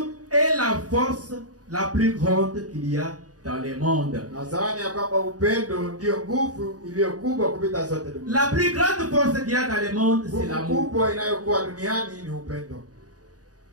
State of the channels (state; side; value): late; left; 0.68 ms